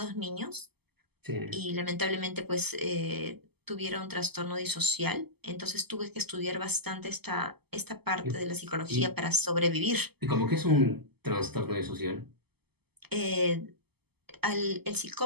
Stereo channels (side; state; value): left; late; 0.97 ms